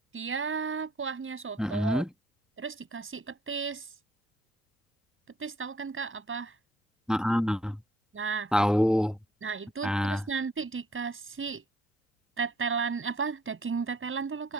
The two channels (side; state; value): both; normal; correlation 0.63